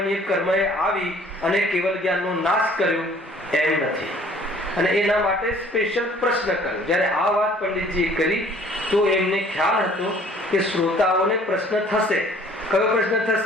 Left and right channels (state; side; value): normal; both; correlation 0.55